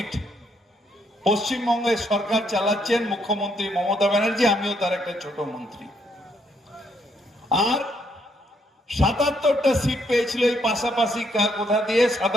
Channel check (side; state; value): both; normal; correlation 0.73